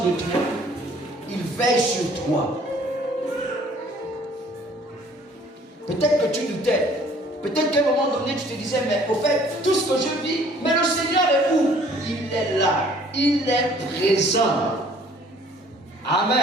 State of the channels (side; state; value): both; normal; correlation 0.56